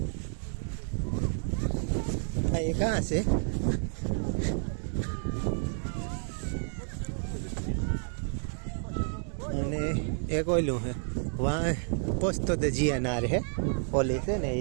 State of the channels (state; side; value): silent; left; 58 dB below the other